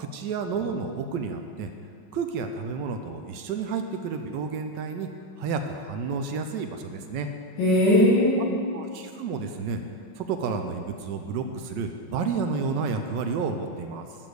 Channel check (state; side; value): late; right; 5.4 ms